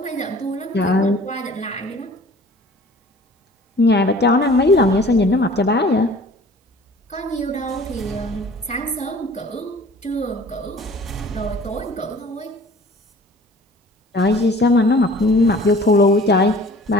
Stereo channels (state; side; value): normal; both; correlation 0.48